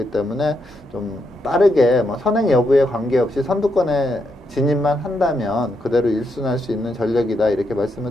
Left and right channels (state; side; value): normal; both; correlation 0.80